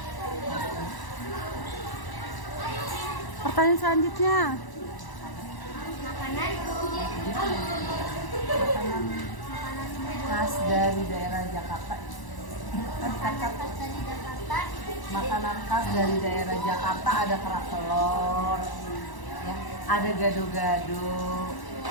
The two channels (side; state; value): right; late; 1.0 ms